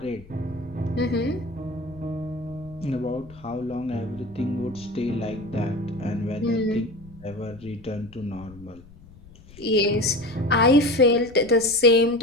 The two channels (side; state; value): left; noise; rumble, 21 dB below the sound